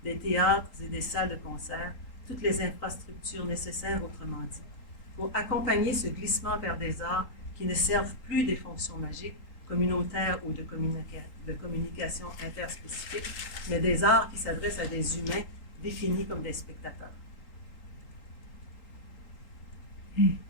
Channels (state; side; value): late; right; 3.8 ms